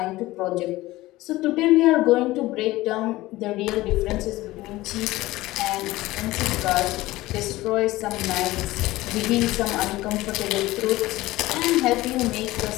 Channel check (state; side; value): quieter; right; 18.1 dB